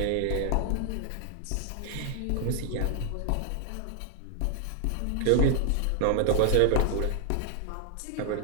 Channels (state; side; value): different; both; correlation 0.00